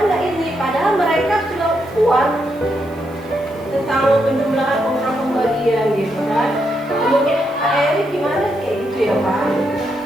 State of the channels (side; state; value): right; noise; hiss, 29 dB below the sound